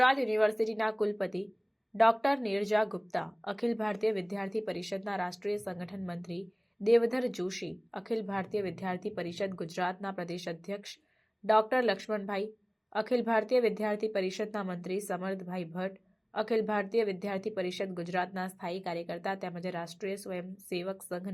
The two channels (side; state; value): both; identical; correlation 1.00